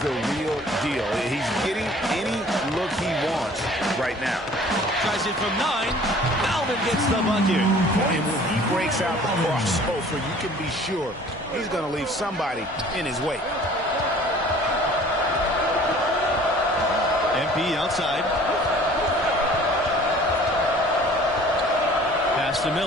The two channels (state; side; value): normal; both; correlation 0.50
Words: real deal. He's getting any look he wants right now. Tries it from 9. Malvin gets the bucket. And when he breaks out the crossover, you can be sure he's going to leave somebody in his wake. MP outside. Pass to